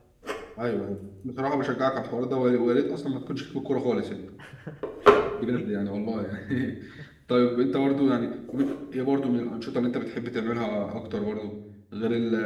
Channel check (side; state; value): both; identical; correlation 1.00